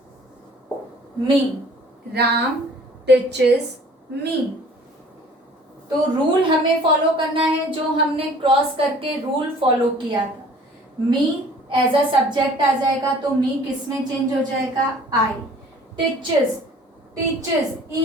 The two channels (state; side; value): normal; both; correlation 0.51